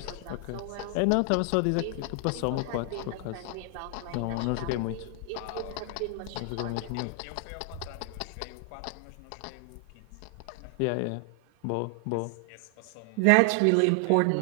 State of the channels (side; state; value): both; different; correlation 0.00